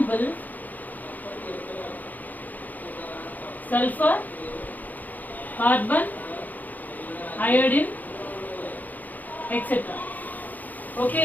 sulfur, carbon, iodine, etc.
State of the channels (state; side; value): late; right; 0.082 ms